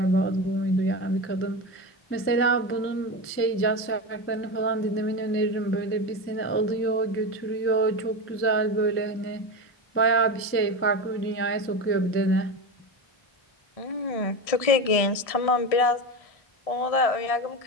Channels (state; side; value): late; right; 1.6 ms